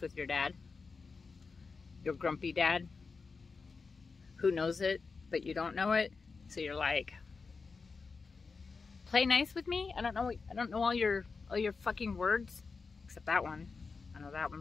your dad? Your grumpy dad? Who knows it, but you don't know it? So you're like, play nice with me? I don't know all your fucking words. Except that one. I know that one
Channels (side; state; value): right; quieter; 4.6 dB